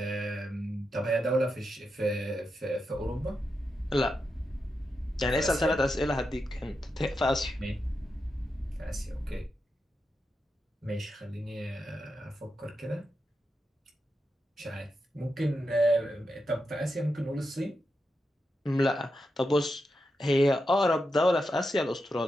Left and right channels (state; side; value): normal; both; correlation 0.87